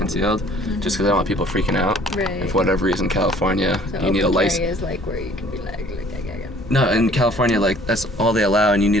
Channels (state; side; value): noise; left; hum, 17 dB below the sound